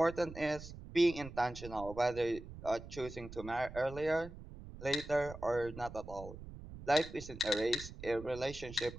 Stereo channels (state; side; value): noise; right; rumble, 13 dB below the sound